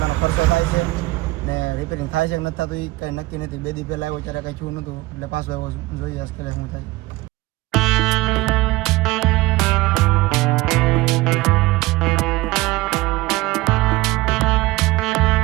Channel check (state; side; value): quieter; left; 20.4 dB